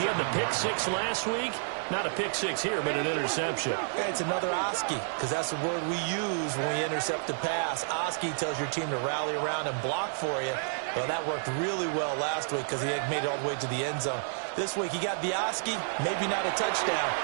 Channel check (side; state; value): left; silent; digital silence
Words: had the pick 6 last week. Not a pick 6 here, but an interception. It's another Oski, because that's the word we use when we intercept a pass. Oski tells your team to rally around and block for you. Well, that worked really well last week because he had made it all the way to the end zone. This week he got the Oski, maybe not a touchdown,